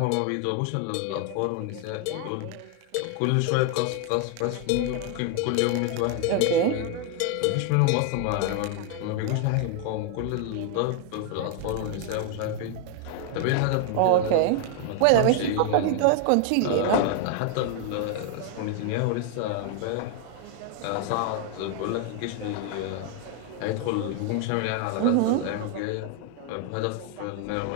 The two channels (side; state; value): both; different; correlation 0.00